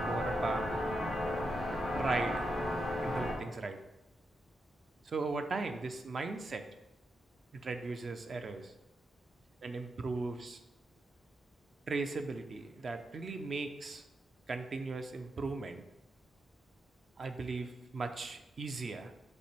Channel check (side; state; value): both; normal; correlation 0.85